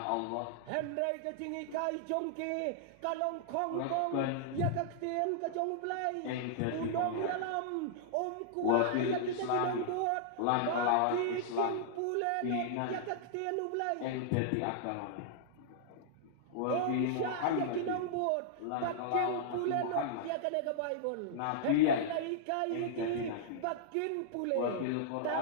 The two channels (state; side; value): different; both; correlation -0.01